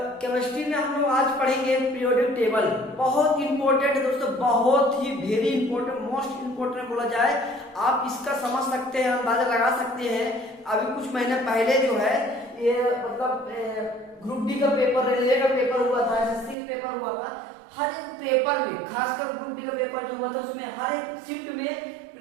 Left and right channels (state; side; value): drops out; left; at 16.6 s